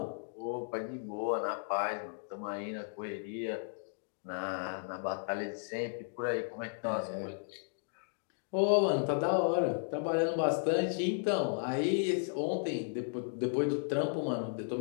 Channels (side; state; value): right; silent; digital silence